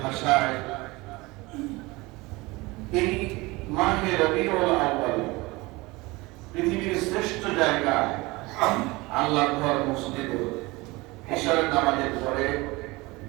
ভাষায় এই মাহে রবিউল আউয়াল পৃথিবীর শ্রেষ্ঠ জায়গা আল্লাহর ঘর মসজিদে ইশারের নামাজের পরে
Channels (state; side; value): quieter; left; 22.7 dB